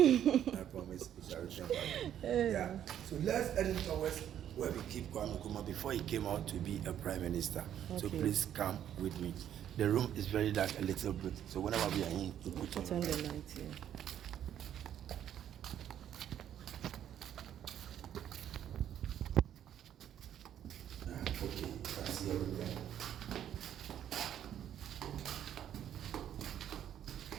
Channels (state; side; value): quieter; left; 10.3 dB